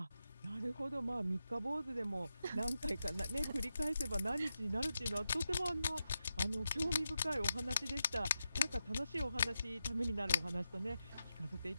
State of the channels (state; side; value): inverted; both; correlation -0.88